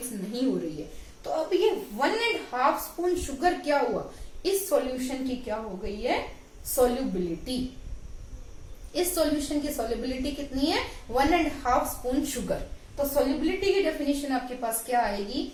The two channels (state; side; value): identical; both; correlation 1.00